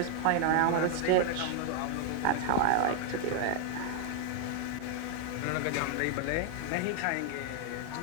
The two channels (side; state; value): both; different; correlation 0.00